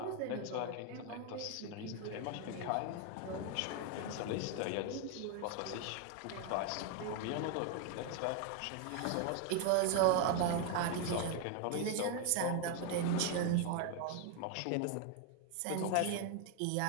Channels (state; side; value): different; both; correlation 0.01